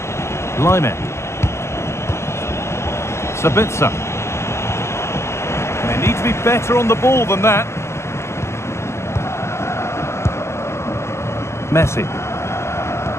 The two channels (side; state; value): right; late; 0.13 ms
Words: Lyman. Sabitzer. They need to be better on the ball than that. Messi.